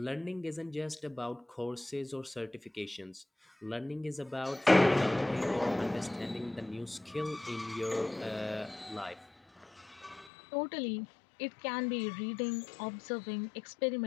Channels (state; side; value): drops out; right; at 10.3 s